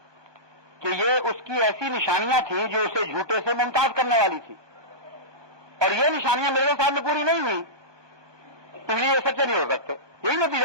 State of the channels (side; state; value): left; late; 1.2 ms